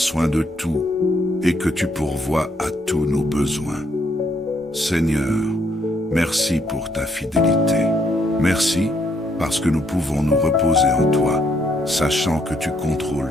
de tout et que tu pourvois à tous nos besoins. Seigneur, merci pour ta fidélité. Merci parce que nous pouvons nous reposer en toi, sachant que tu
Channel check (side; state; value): both; normal; correlation 0.72